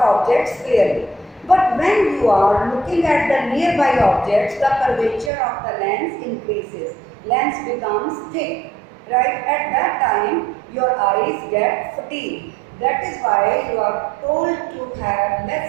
objects clearly. But when you are looking at the nearby objects, the curvature of the lens increases, lens becomes thick, right. At that time your eyes get fatigued. That is why you are told to have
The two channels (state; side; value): drops out; left; at 5.3 s